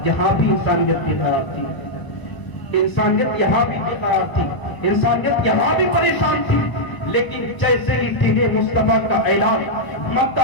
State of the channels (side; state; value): right; late; 1.0 ms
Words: یہاں بھی انسانیت بے قرار تھی, انسانیت یہاں بھی بے قرار تھی, انسانیت یہاں بھی پریشان تھی. لیکن جیسے ہی دین مصطفیٰ کا اعلان مکہ